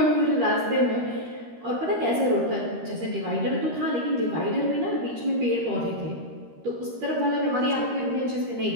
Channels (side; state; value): left; late; 13 ms